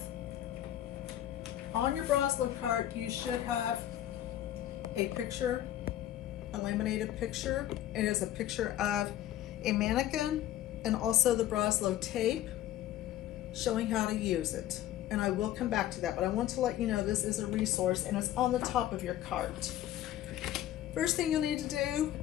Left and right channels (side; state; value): right; quieter; 12.8 dB